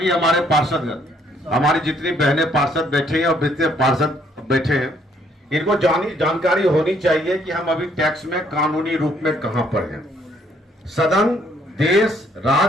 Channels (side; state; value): both; normal; correlation 0.66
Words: हमारे पार्षदगण, हमारी जितनी बहनें पार्षद बैठे हैं और जितने पार्षद बैठे हैं, इनको जानकारी होनी चाहिए कि हम अभी टैक्स में कानूनी रूप में कहां पर हैं। सदन, देश,